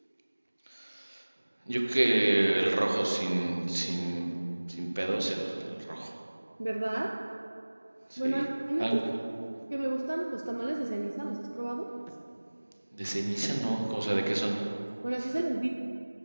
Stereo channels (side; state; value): both; inverted; correlation -1.00